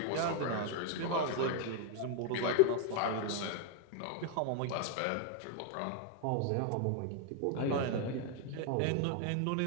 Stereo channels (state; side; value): different; both; correlation 0.01